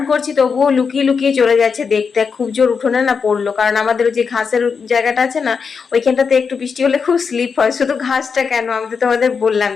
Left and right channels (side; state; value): right; quieter; 5.7 dB